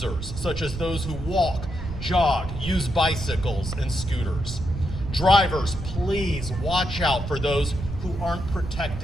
such as those who walk, jog, use bicycles and scooters. Drivers, please watch out for those who aren't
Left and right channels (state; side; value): noise; right; rumble, 8 dB below the sound